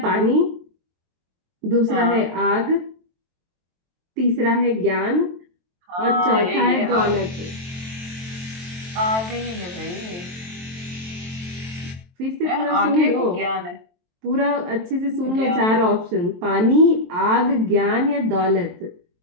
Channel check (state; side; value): late; left; 23 ms